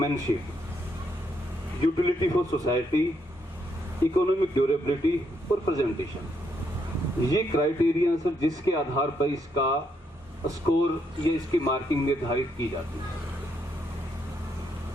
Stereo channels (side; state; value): both; normal; correlation 0.76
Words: utility for society, economic durability और प्रेजेंटेशन। ये क्राइटेरिया सर जिसके आधार पर इसका स्कोर या इसकी मार्किंग निर्धारित की जाती है।